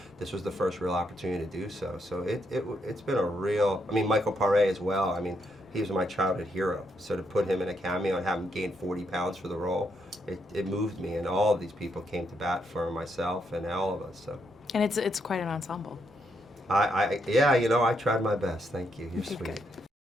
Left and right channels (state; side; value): normal; both; correlation 0.77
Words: this was the first real opportunity to do so. So it's been a real, Michael Paré as well, he was my childhood hero, so to put him in a cameo and have him gain 40 pounds for the role, it moved me, and all of these people came to bat for myself and all of us. So. And it's quite an ensemble. I tried my best, thank you, you're sweet. Good.